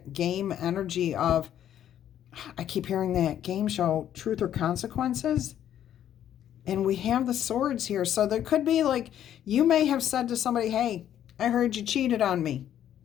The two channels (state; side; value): quieter; right; 10.7 dB